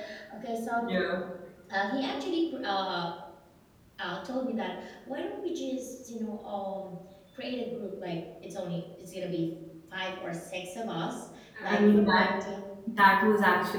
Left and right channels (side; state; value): both; identical; correlation 1.00